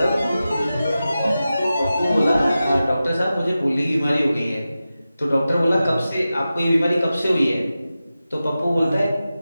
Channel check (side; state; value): both; inverted; correlation -0.93